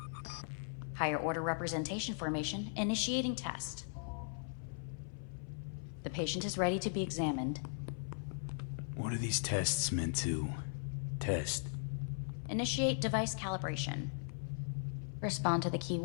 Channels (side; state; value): right; silent; 52 dB below the other